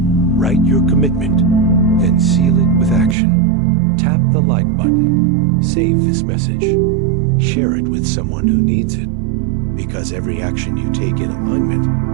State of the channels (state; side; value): drops out; left; at 3.2 s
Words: Write your commitment, then seal it with action. Tap the like button. Save this message. Share it with someone who needs it. Because every action you take in alignment